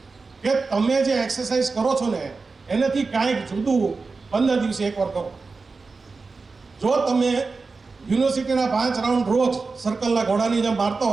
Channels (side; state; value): left; quieter; 4.2 dB